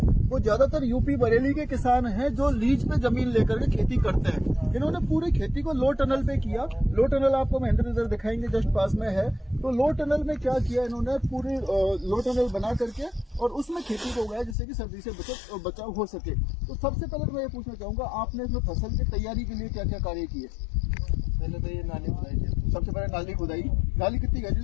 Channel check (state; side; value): drops out; right; at 14.6 s